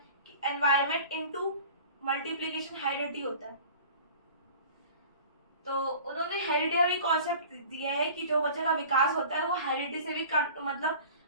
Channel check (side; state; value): both; inverted; correlation -0.42